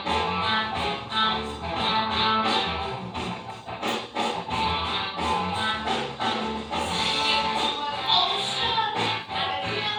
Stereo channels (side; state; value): both; identical; correlation 1.00